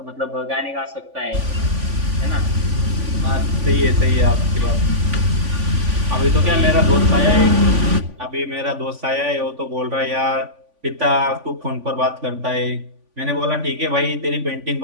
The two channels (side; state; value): left; late; 3.5 ms